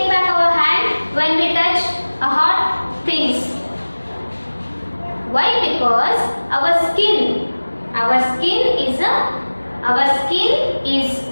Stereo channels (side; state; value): both; inverted; correlation -1.00